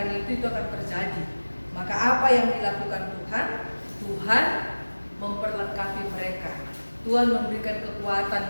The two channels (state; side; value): inverted; both; correlation -1.00